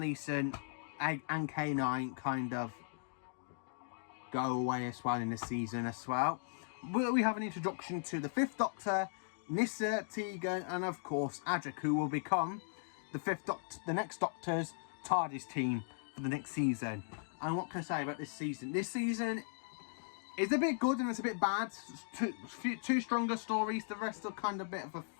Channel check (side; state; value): right; silent; digital silence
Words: and K9 kind of go away as well in this season as well. We have an introduction to the 5th Doctor, Nyssa, Tegan, and of course Adric, who will become the 5th Doctor, the next Doctor's TARDIS team for the next season. And what can I say about this season? This season is a bit good and it's a bit bad. 2 stronger stories. The rest are kind of a bit of a